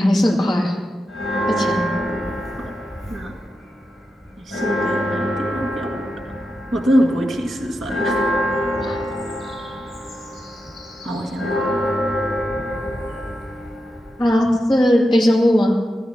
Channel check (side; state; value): both; normal; correlation 0.88